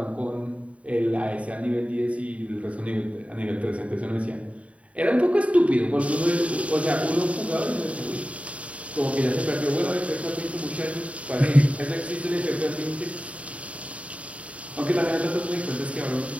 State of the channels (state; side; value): late; left; 0.065 ms